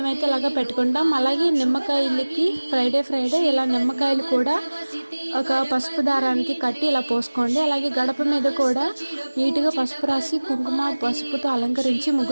ఇలాగ పెట్టుకుంటాం. అలాగే నిమ్మకాయలకి ఫ్రైడే ఇలా నిమ్మకాయలు కూడా ఒక పసుపు దారానికి కట్టి ఇలా పోసుకోండి. అలాగే గడప మీద కూడా నీట్గా పసుపు రాసి కుంకుమ పసుపుతో అలంకరించి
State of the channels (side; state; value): both; inverted; correlation -1.00